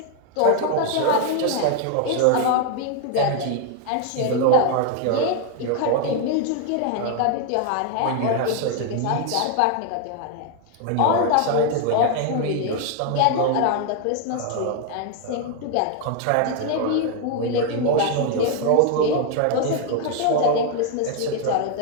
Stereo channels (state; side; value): different; both; correlation 0.00